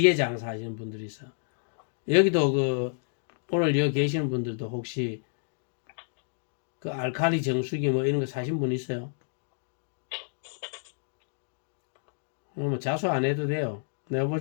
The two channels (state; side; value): silent; right; digital silence